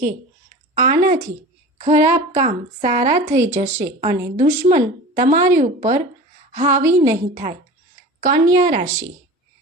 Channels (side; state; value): both; normal; correlation 0.36